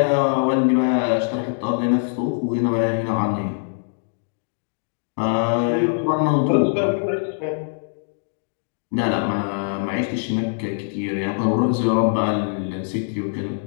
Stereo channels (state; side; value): silent; right; digital silence